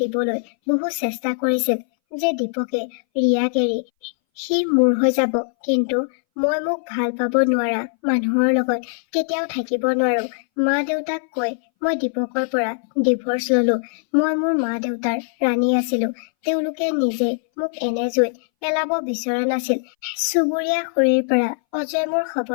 বহু চেষ্টা কৰিছিল যে দীপকে ৰিয়াক এৰি সি মোৰ হৈ যাব, কিন্তু মই মোক ভাল পাব নোৱাৰা মানুহৰ লগত কেতিয়াও থাকিব নোৱাৰো। মা দেউতাক কৈ মই দীপকৰ পৰা ডিভোৰ্চ ললো। মই মোৰ মা দেউতাৰ ৰাণী আছিলো। তেওঁলোকে নিজে মোক এনে জুইত পেলাব বিচৰা নাছিল। চুবুৰীয়া খুৰীৰ পৰা অজয় মোৰ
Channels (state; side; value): silent; right; 62 dB below the other